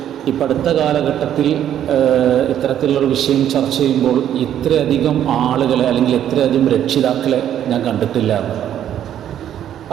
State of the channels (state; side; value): quieter; left; 10.6 dB